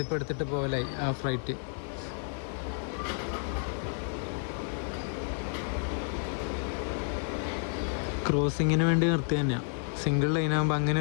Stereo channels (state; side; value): silent; right; 57 dB below the other